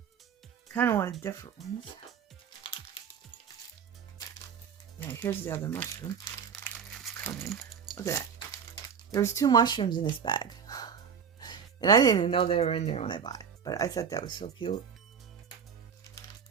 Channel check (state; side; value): quieter; left; 7.1 dB